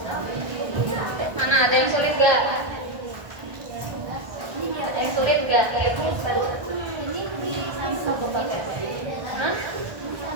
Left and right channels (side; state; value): left; late; 1.5 ms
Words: Mana ada yang sulit gak? Ada yang sulit gak? Ya, Hah?